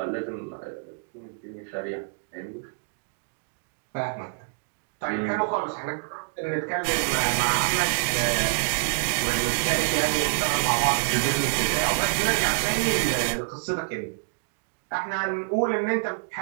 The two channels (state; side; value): silent; left; digital silence